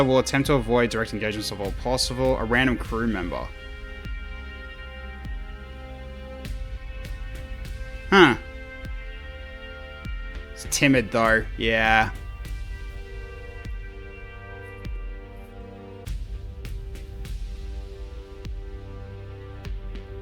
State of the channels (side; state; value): both; identical; correlation 1.00